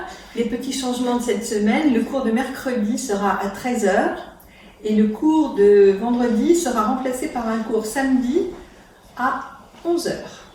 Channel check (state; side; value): identical; both; correlation 1.00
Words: Les petits changements de cette semaine, le cours de mercredi sera à 13 h et le cours de vendredi sera remplacé par un cours samedi à 11 h.